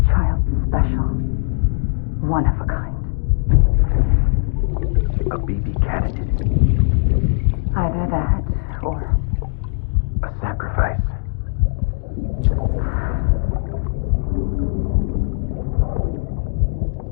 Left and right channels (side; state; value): right; silent; digital silence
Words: Child's special. One of a kind. A BB candidate. Either that, or A sacrifice.